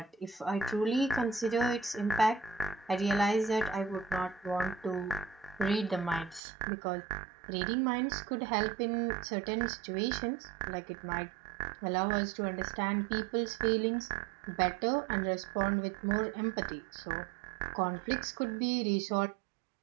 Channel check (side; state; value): left; drops out; at 6.4 s